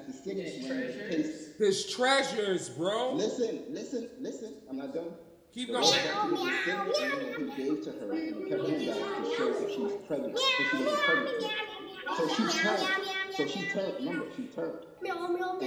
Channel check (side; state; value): both; identical; correlation 1.00